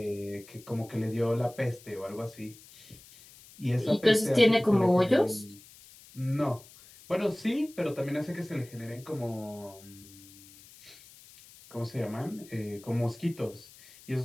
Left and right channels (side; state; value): left; noise; hiss, 22 dB below the sound